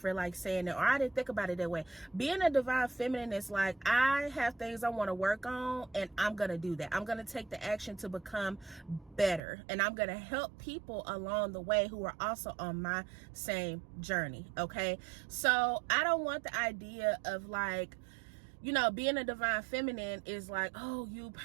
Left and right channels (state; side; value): drops out; left; at 9.4 s